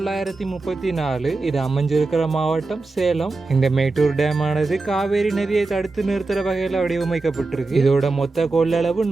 இது அமைஞ்சிருக்கிற மாவட்டம் சேலம். இந்த மேட்டூர் டேம் ஆனது காவேரி நதியை தடுத்து நிறுத்துற வகையில வடிவமைக்கப்பட்டிருக்கு. இதோட மொத்த கொள்ளளவு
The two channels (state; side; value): quieter; left; 3.5 dB